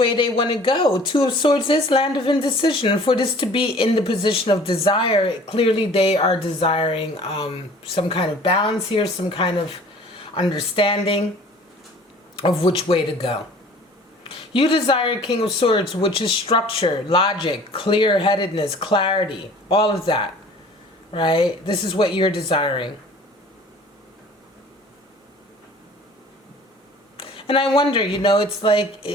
they want to go. Two of Swords is land of indecision. And for this to be in the position of desire, clearly they are desiring some kind of balance here, some kind of understanding of which way to go. You desire King of Swords, which is structure, logic, clear-headedness, clarity, all of that, right? This is what you're desiring. And I wonder, you know, it's like,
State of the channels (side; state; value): both; normal; correlation 0.49